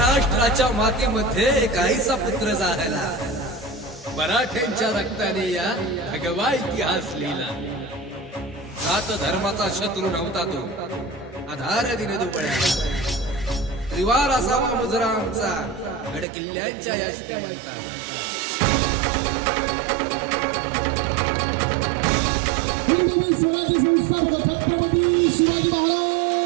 मातीमध्ये काहीसा पुत्र जाहला, मराठ्यांच्या रक्ताने या भगवा इतिहास लिहिला. सात धर्माचा शत्रू नव्हता तो, आधार दिने दुबळ्या. त्रिवार असावा मुजरा आमचा, गड किल्ल्यांच्या या श्रीमंता. स्वराज्य संस्थापक छत्रपती शिवाजी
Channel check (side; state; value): left; drops out; at 16.2 s